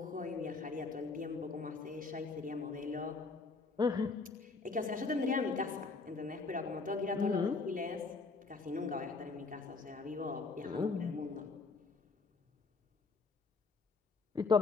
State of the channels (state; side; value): quieter; right; 4.1 dB